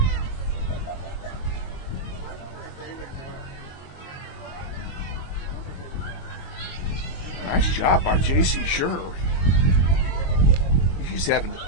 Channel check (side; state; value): right; late; 22 ms